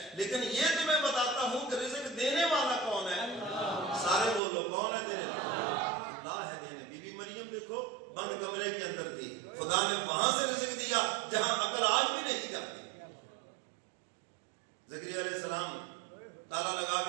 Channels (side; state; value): left; drops out; at 4.4 s